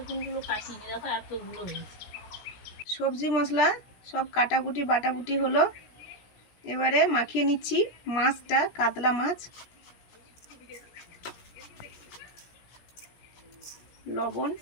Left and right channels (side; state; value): right; late; 17 ms